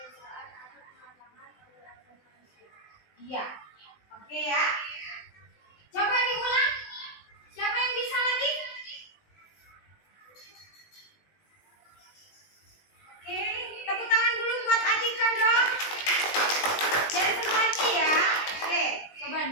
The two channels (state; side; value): late; right; 20 ms